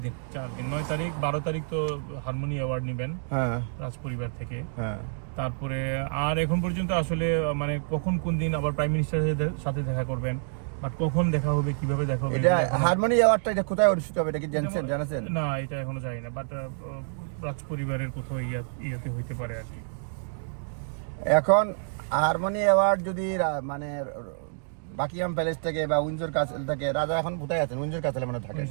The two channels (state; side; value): silent; left; digital silence